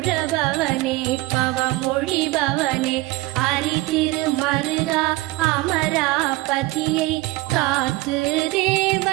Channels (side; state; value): left; quieter; 20.5 dB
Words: பவனே பவமொழி பவனே அரிதிரு மருகா அமராபதியை காத்து